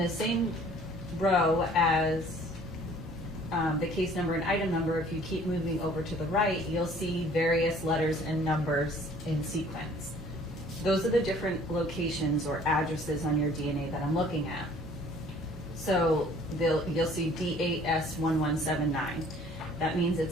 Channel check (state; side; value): normal; both; correlation 0.54